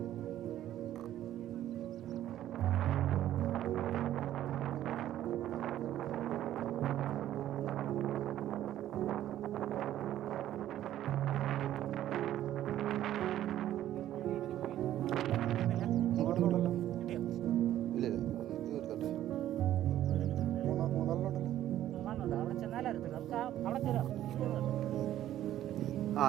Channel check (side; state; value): left; quieter; 12.5 dB